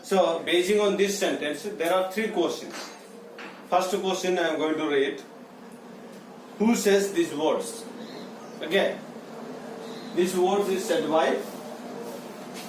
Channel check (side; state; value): both; identical; correlation 1.00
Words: So basing on this sentence, there are three questions. First question I am going to read. Who says these words? Okay. These words is said by